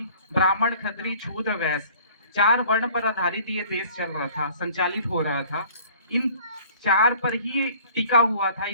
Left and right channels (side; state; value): both; inverted; correlation -0.51